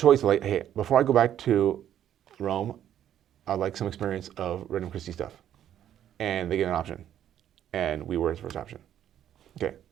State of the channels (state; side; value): quieter; left; 10.7 dB